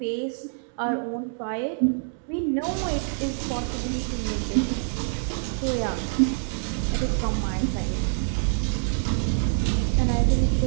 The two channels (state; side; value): silent; left; digital silence